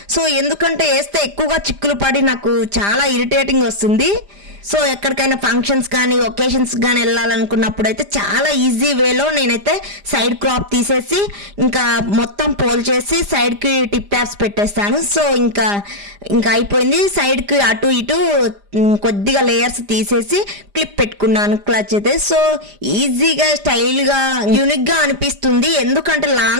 సో ఎందుకంటే వేస్తే ఎక్కువగా చిక్కులు పడి నాకు చాలా ఇరిటేటింగ్ వస్తుంది. సో ఎక్కడికైనా ఫంక్షన్స్ కానీ ఒకేషన్స్ కానీ వెళ్ళాలనుకున్నప్పుడు అయితే చాలా ఈజీ వేలో నేనైతే సైడ్ క్రాప్ తీసేసి ఇంకా మొత్తం పోల్ చేసి సైడ్కి టిప్ ట్యాప్స్ పెట్టేస్తాను. సో ఇంకా అయిపోయింది. సైడ్కి అటు ఇటు కొద్దిగా లేయర్స్ తీసేసి క్లిప్ పెట్టుకున్నాను క్లచ్ అయితే. సో ఈజీగా స్టైల్గా యూనిక్గా అనిపిస్తుంది. ఎందుకంటే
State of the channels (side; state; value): left; late; 5.0 ms